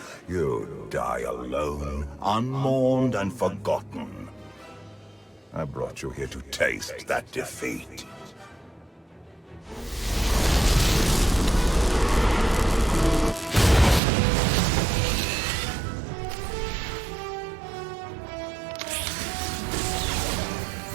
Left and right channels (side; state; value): left; drops out; at 14.0 s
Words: you die alone, unmourned and forgotten. I brought you here to taste that defeat.